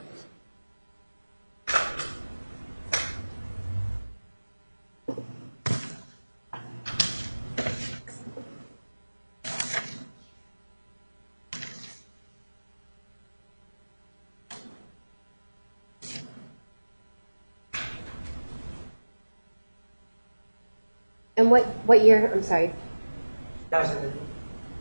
And what year, I'm sorry, 2008.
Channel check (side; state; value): both; inverted; correlation -1.00